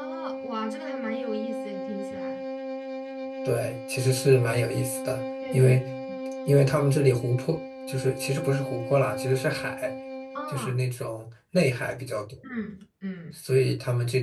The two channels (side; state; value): both; identical; correlation 1.00